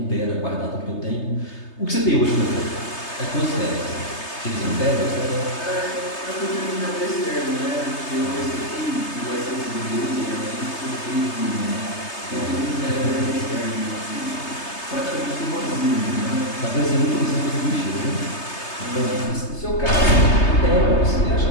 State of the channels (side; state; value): right; late; 3.3 ms